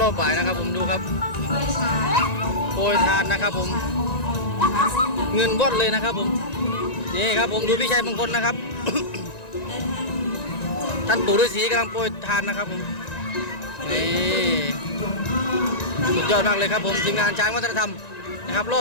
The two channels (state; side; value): late; right; 1.9 ms